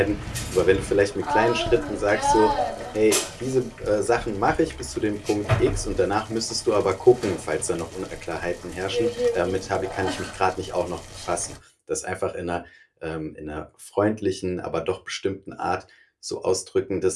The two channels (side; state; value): both; identical; correlation 1.00